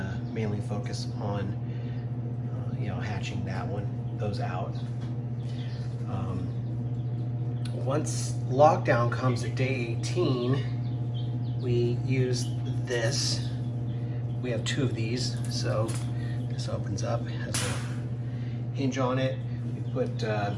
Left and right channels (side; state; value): both; identical; correlation 1.00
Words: mainly focus on hatching those out. Once lockdown comes at day 18, we use this. We have 2 of these, so this opens up, has a hinge on it. We put